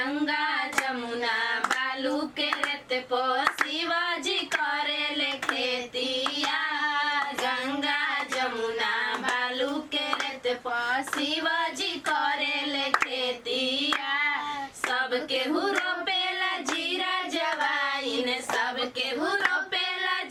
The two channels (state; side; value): identical; both; correlation 1.00